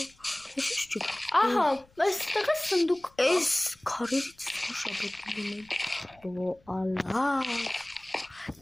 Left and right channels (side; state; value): left; noise; rumble, 30 dB below the sound